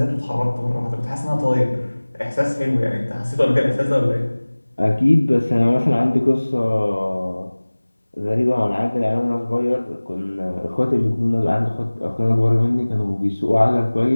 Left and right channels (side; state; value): both; inverted; correlation -1.00